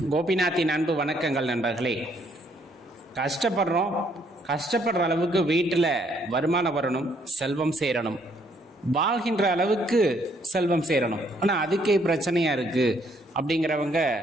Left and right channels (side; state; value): both; normal; correlation 0.68